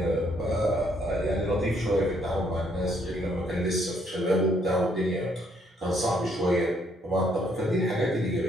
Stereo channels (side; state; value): both; normal; correlation 0.69